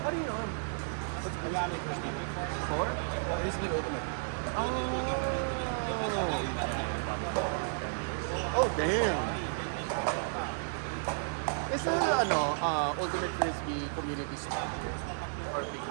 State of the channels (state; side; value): silent; left; digital silence